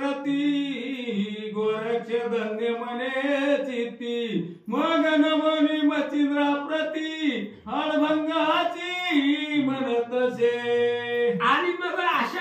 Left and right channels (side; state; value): both; identical; correlation 1.00